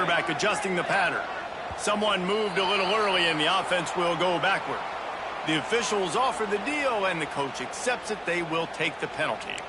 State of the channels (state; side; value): identical; both; correlation 1.00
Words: adjusting the pattern. Someone moved a little early, and the offense will go backward. The officials offer the deal, and the coach accepts it. They will take the penalty.